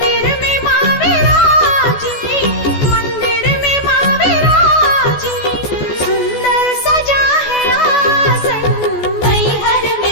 में माँ विराजी, मंदिर में माँ विराजी, सुंदर सजा है आसन। मैहर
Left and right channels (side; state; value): right; late; 14 ms